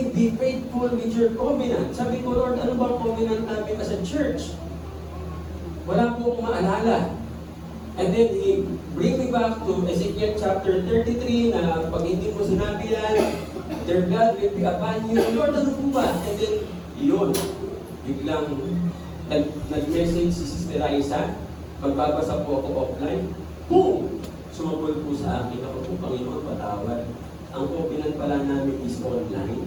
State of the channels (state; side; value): identical; both; correlation 1.00